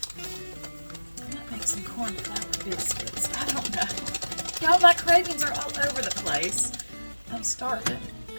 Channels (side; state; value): both; inverted; correlation -1.00